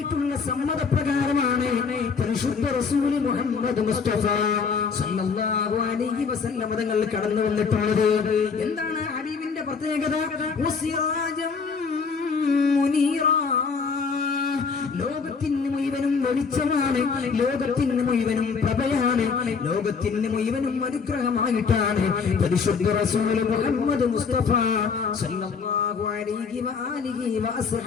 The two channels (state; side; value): quieter; right; 5.4 dB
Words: സമ്മതപ്രകാരമാണ് പരിശുദ്ധ റസൂൽ മുഹമ്മദ് മുസ്തഫ സല്ലല്ലാഹു അലൈഹി വസല്ലം തങ്ങൾ കടന്നു വന്നിട്ടുള്ളത്. എന്താണ് ഹബീബിന്റെ പ്രത്യേകത? വസിറാജൻ മുനീറാ. ലോകത്തിന് മുഴുവനും വെളിച്ചമാണ്, ലോകത്തിന് മുഴുവനും പ്രഭയാണ്, ലോകത്തിന് മുഴുവനും അനുഗ്രഹമായിട്ടാണ് പരിശുദ്ധ റസൂൽ മുഹമ്മദ് മുസ്തഫ സല്ലല്ലാഹു അലൈഹി വആലിഹി